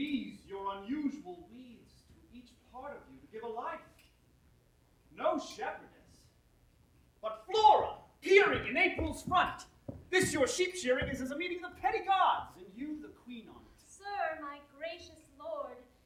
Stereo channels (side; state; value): both; identical; correlation 1.00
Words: your unusual weeds to each part of you to give a life. No shepherdess, but Flora, peering in April's front. This your sheep shearing is as a meeting of the petty gods, and you the queen on it. Sir, my gracious lord,